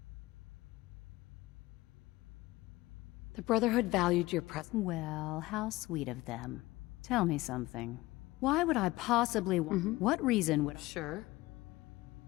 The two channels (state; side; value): quieter; right; 19.4 dB